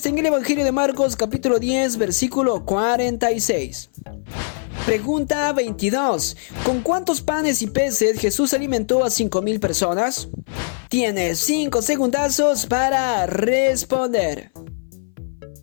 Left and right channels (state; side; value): silent; right; 59 dB below the other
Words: en el Evangelio de Marcos, capítulo 10, versículo 46. Pregunta 22. ¿Con cuántos panes y peces Jesús alimentó a 5,000 personas? Tienes 5 segundazos para responder.